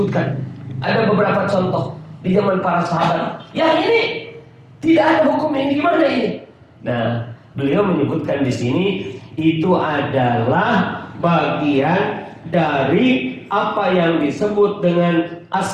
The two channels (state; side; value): identical; both; correlation 1.00